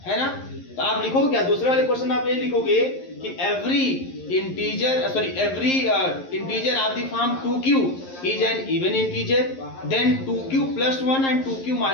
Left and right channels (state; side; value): late; right; 11 ms